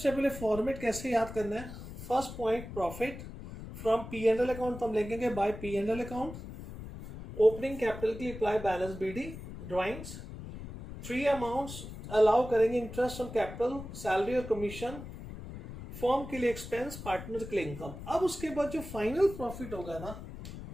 पहले फॉर्मेट कैसे याद करना है? First point profit from P&L account, तो हम लिखेंगे by P&L account. Opening capital के लिए apply balance BD, drawings. Three amounts allow करेंगे इंटरेस्ट ऑन कैपिटल, सैलरी और कमीशन, फॉर्म के लिए एक्सपेंस, पार्टनर के लिए इनकम। अब उसके बाद जो फाइनल प्रॉफिट होगा ना,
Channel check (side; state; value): left; noise; rumble, 11 dB below the sound